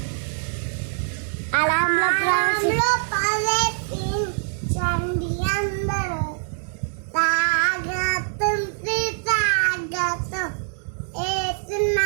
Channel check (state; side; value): silent; left; digital silence